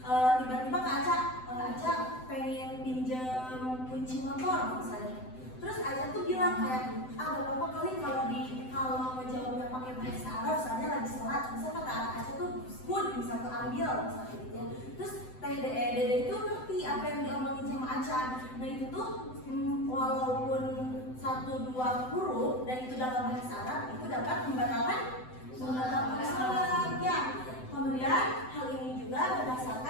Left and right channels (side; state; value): right; late; 7.8 ms